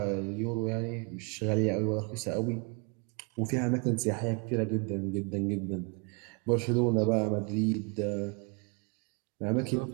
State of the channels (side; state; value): left; quieter; 34.3 dB